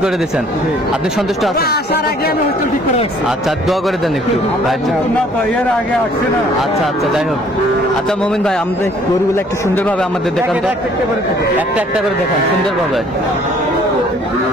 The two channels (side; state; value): both; normal; correlation 0.58